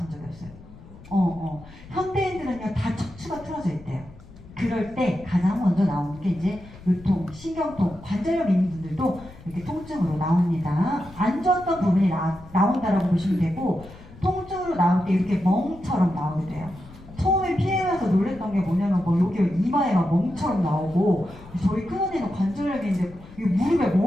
적이 없어요. 현대인들은요 다 척추가 틀어져 있대요. 그럴 때 가장 먼저 나오는 게 이제 요통, 신경통, 관절염 있는 분들도 이렇게 통증으로 나옵니다. 안 좋았던 부분이 나온다라고 보시면 되고, 통증으로 나올 때 이렇게 멍처럼 나오게 돼요. 처음에 피해가서 놀랬던 게 뭐냐면 여기 이마에 막 멍처럼 나오고, 저희 큰언니는 관절염인데 무릎에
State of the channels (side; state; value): left; noise; rumble, 19 dB below the sound